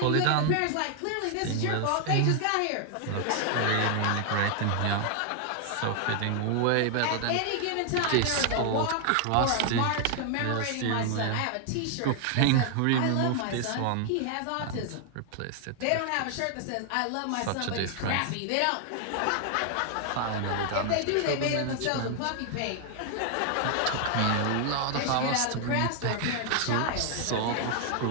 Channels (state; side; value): different; both; correlation 0.00